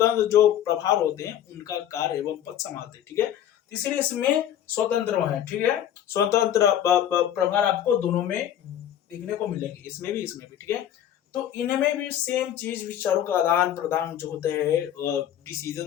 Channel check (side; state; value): right; quieter; 10.7 dB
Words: जो प्रभार होते हैं उनका कार्य एवं पद संभालते हैं, ठीक है। इसलिए इसमें स्वतंत्र है, ठीक है, स्वतंत्र प्रभार आपको दोनों में देखने को मिलेंगे, इसमें भी, इसमें भी, ठीक है। तो इनमें भी सेम चीज, विचारों का आदान प्रदान जो होते हैं,